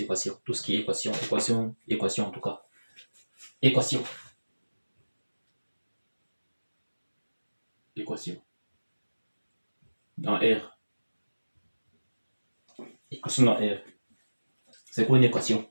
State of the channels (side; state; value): both; inverted; correlation -1.00